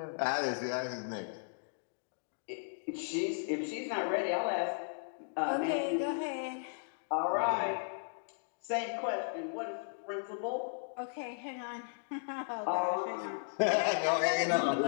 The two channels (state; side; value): silent; right; digital silence